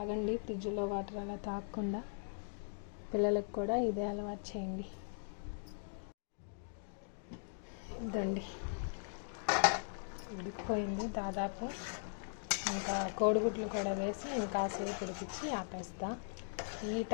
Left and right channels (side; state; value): right; silent; digital silence